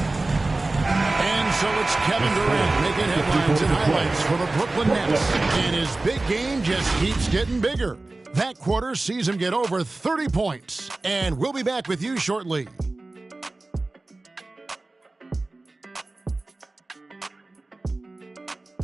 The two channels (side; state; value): left; quieter; 3.1 dB